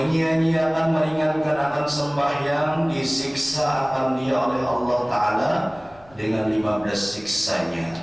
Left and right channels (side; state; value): left; noise; rumble, 27 dB below the sound